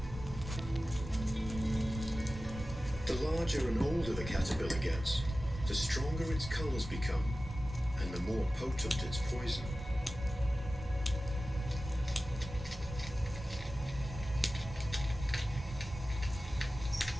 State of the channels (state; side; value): normal; both; correlation 0.95